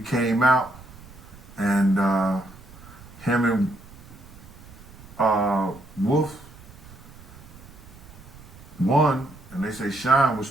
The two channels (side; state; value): right; noise; rumble, 20 dB below the sound